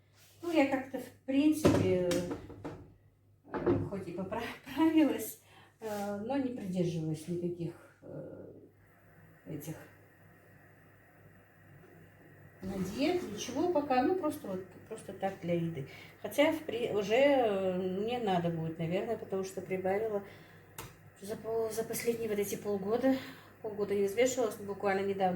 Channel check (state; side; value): identical; both; correlation 1.00